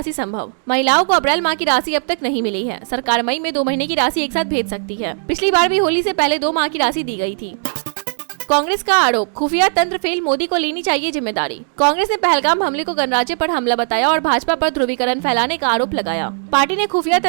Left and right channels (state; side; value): silent; left; digital silence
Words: संभव। महिलाओं को अप्रैल माह की राशि अब तक नहीं मिली है। सरकार मई में 2 महीने की राशि एक साथ भेज सकती है। पिछली बार भी होली से पहले 2 माह की राशि दी गई थी। कांग्रेस का आरोप, खुफिया तंत्र फेल, मोदी को लेनी चाहिए जिम्मेदारी। कांग्रेस ने पहलगाम हमले को गणराज्य पर हमला बताया और भाजपा पर ध्रुवीकरण फैलाने का आरोप लगाया। पार्टी ने खुफिया